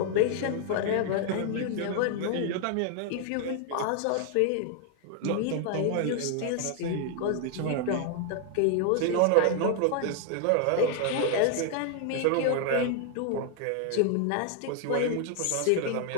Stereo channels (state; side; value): different; both; correlation 0.00